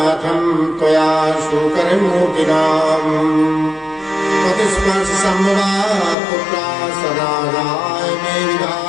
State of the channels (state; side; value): drops out; right; at 6.2 s